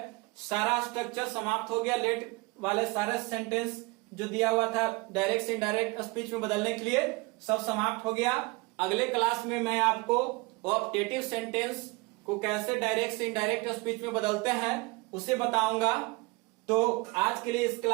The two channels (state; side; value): quieter; left; 25.7 dB